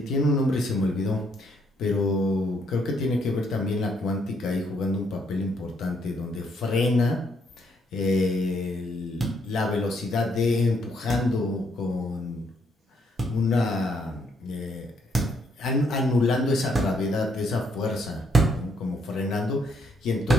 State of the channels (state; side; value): normal; both; correlation 0.72